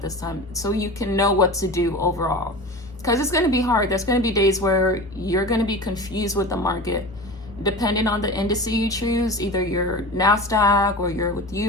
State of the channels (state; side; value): normal; both; correlation 0.32